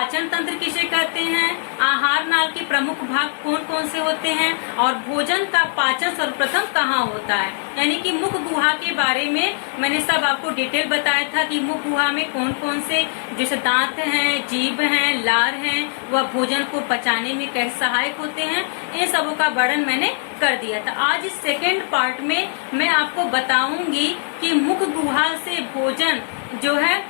तंत्र किसे कहते हैं, आहार नाल के प्रमुख भाग कौन कौन से होते हैं और भोजन का पाचन सर्वप्रथम कहाँ होता है। यानी कि मुख गुहा के बारे में मैंने सब आपको डिटेल बताया था कि मुख गुहा में कौन कौन से जैसे दांत हैं, जीभ हैं, लार हैं, वह भोजन को पचाने में कैसे सहायक होते हैं, इन सबों का वर्णन मैंने कर दिया था। आज इस सेकेंड पार्ट में मैं आपको बताऊंगी कि मुख गुहा से भोजन जो है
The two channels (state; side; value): silent; right; digital silence